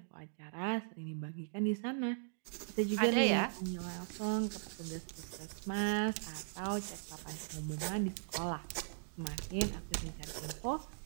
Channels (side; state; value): left; silent; digital silence